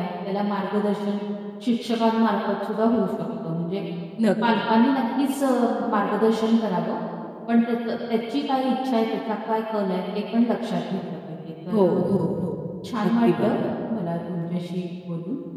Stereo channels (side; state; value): both; identical; correlation 1.00